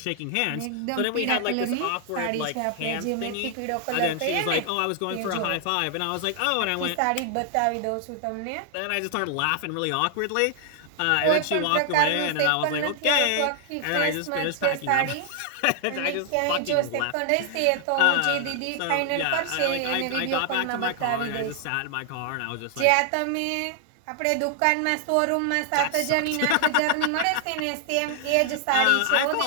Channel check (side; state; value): both; different; correlation 0.00